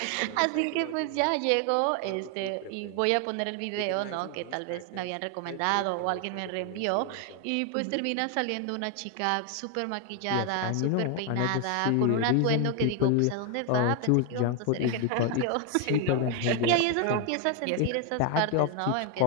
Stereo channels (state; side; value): different; both; correlation 0.01